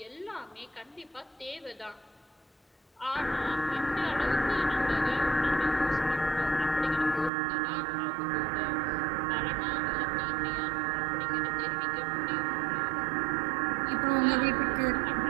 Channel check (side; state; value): left; drops out; at 7.3 s